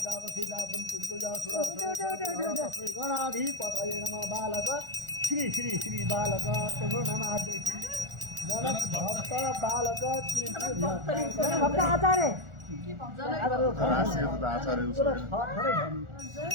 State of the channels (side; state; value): left; late; 1.4 ms